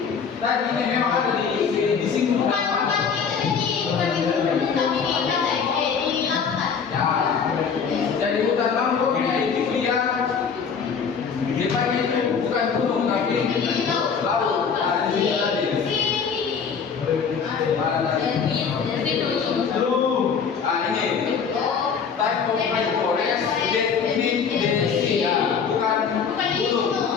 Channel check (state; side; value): quieter; right; 6.3 dB